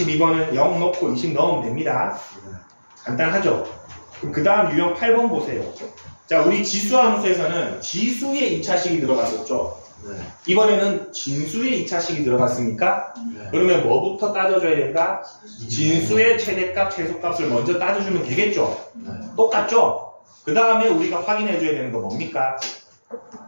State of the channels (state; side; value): inverted; both; correlation -1.00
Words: 0 넣고 20 넣으면 됩니다. 간단하죠? 그 다음 유형 8번 보세요. 자, 우리 지수 함수에서는 지수의 2차식이 들어갔었죠? 이번에는 진수의 2차식이 들어갔습니까? 그러면 뭐부터 따져줘야 된다? 진수의 최대값, 최소값을 먼저 따져주면 되겠죠? 똑같죠? 그 다음에 우리가 확인해줘야 되는 거 뭡니까?